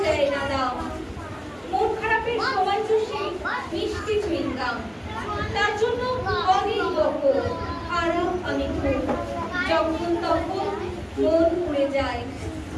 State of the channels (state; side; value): identical; both; correlation 1.00